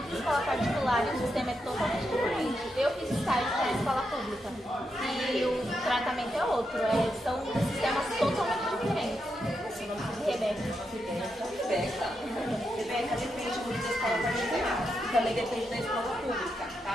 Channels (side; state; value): both; normal; correlation 0.84